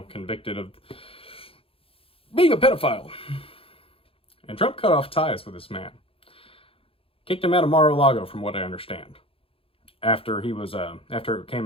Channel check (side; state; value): right; late; 0.27 ms